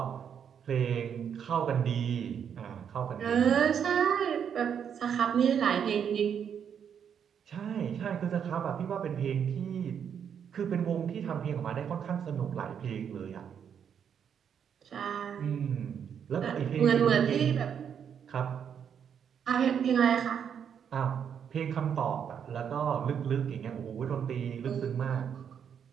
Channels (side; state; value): left; quieter; 8.0 dB